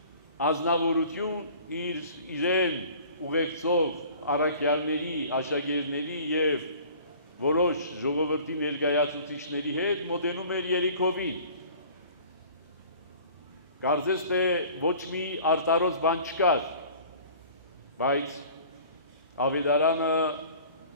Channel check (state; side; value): inverted; both; correlation -0.47